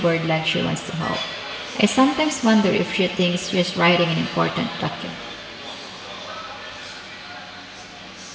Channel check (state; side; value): identical; both; correlation 1.00